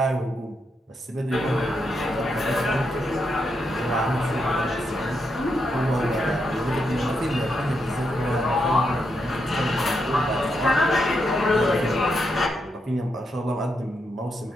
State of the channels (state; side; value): normal; both; correlation 0.82